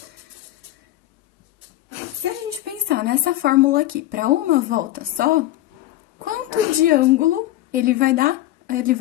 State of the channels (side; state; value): right; quieter; 15.1 dB